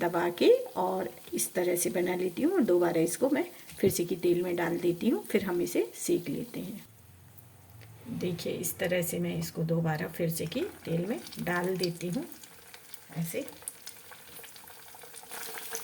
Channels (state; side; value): identical; both; correlation 1.00